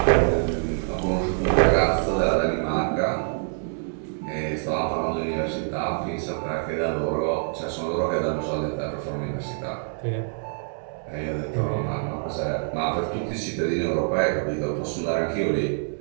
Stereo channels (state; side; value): silent; left; 61 dB below the other